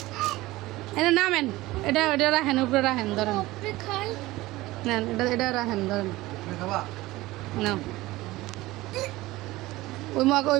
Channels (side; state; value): left; quieter; 18.7 dB